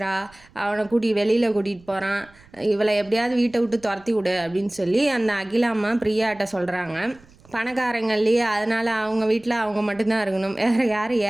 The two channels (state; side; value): noise; right; rumble, 27 dB below the sound